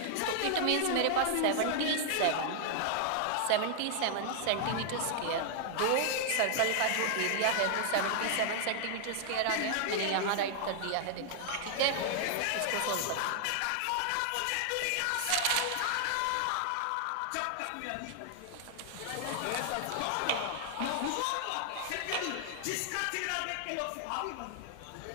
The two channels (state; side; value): different; both; correlation 0.00